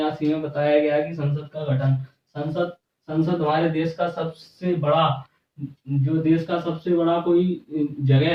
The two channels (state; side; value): identical; both; correlation 1.00